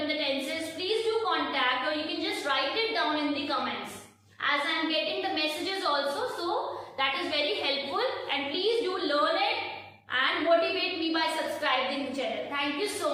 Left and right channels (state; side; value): identical; both; correlation 1.00